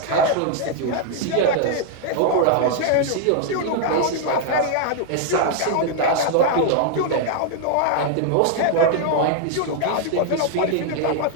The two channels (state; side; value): different; both; correlation 0.00